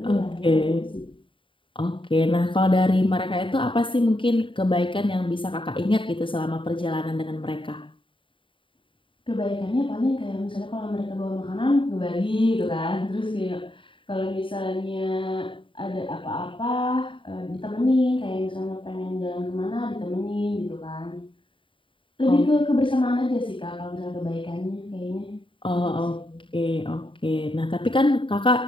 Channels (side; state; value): right; late; 0.25 ms